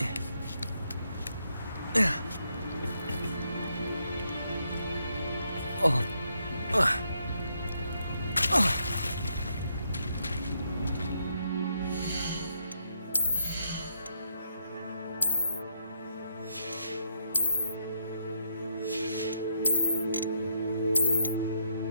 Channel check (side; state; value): both; inverted; correlation -0.76